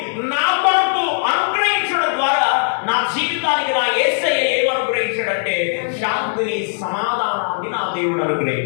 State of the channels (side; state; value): right; silent; 65 dB below the other